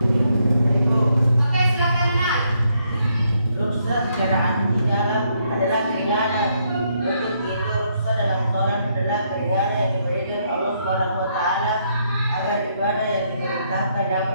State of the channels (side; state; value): both; inverted; correlation -0.74